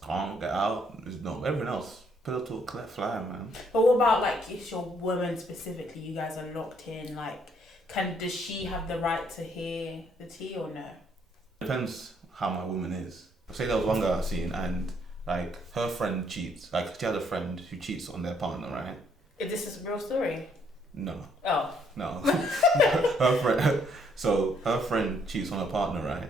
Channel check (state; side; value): normal; both; correlation 0.68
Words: get out, there's no everyone else. Pillow talk, let fly, man. But what about like if your woman specifically, you guys are locked in, like does she have the right to hear the tea or no? Depends how my woman is. Say there was one girl I seen and like her friend cheats. Like she had a friend who cheats on their partner, right? Is this a real story? No. Oh. No. Her friend cheats on her partner, right?